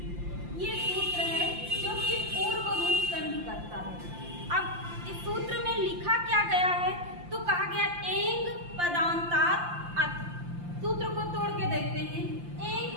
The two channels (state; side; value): late; left; 5.8 ms